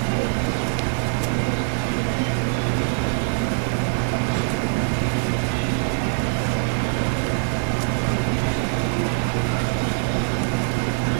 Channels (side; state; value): left; silent; 61 dB below the other